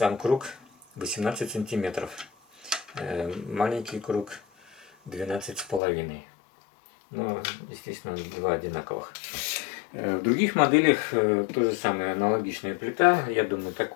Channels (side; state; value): right; drops out; at 5.8 s